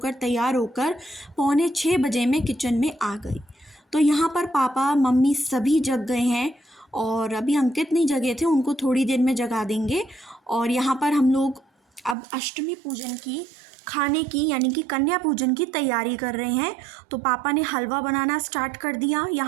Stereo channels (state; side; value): drops out; left; at 12.2 s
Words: तैयार होकर 5:45 बजे मैं किचन में आ गई। तो यहाँ पर पापा मम्मी सभी जग गए हैं और अभी अंकित नहीं जगे थे, उनको थोड़ी देर में जगा देंगे। और यहाँ पर हम लोग अब अष्टमी पूजन की खाने की यानी कि कन्या पूजन की तैयारी कर रहे हैं। तो पापा ने हलवा बनाना स्टार्ट कर दिया।